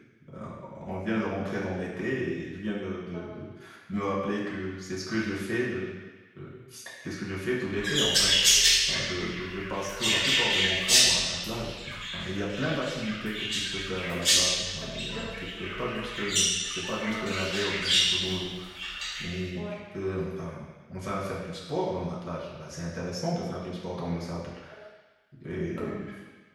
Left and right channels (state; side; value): identical; both; correlation 1.00